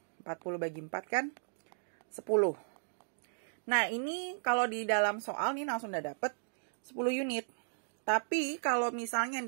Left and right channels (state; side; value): silent; left; digital silence